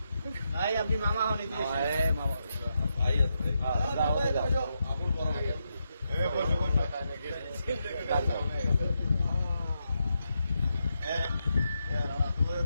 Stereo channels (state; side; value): inverted; both; correlation -0.84